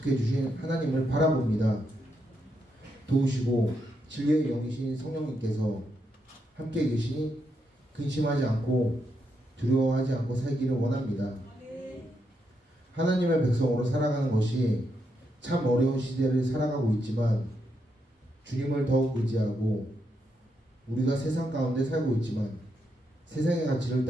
주신 하나님을 바라봅니다. 도우시고 진리의 영이신 성령님께서 함께 계시니 근심하지 않고 두려워하지 않고 살기를 원합니다. 하나님의 백성으로 살아가는 것이 참 어려운 시대를 살아가고 있지만 주님을 더욱 의지하고 우리가 세상 가운데 살고 있지만 세상의 가치를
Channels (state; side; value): normal; both; correlation 0.81